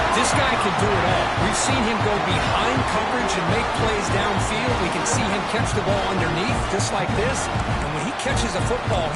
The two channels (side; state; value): both; identical; correlation 1.00